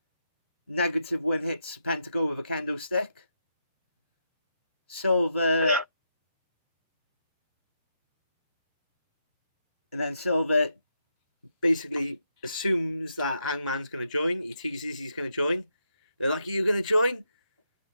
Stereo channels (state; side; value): inverted; both; correlation -0.82